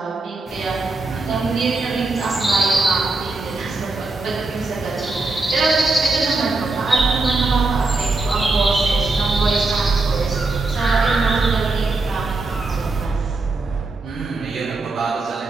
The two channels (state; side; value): quieter; left; 3.4 dB